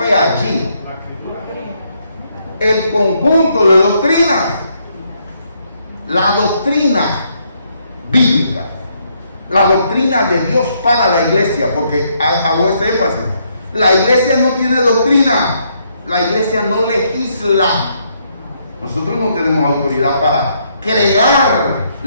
allí? El conjunto de doctrinas, la doctrina bíblica, la doctrina de Dios para la iglesia, porque hago este énfasis. La iglesia no tiene doctrina, la iglesia no legisla. Nosotros no tenemos autoridad para crear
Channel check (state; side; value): inverted; both; correlation -0.73